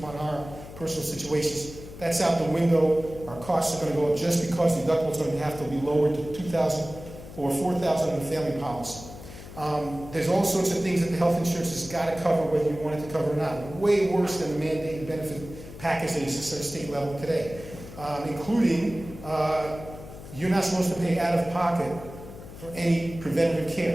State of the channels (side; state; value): left; noise; hum, 14 dB below the sound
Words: our personal situations, that's out the window. Our costs are going to go up just because the deductible is going to have to be lowered to $2,000 or $4,000 in the family policy. There's all sorts of things that the health insurance has got to cover, whether you want it to cover or not. Way worse than the mandated benefit package that exists at a state level today, including you're not supposed to pay out of pocket for any preventative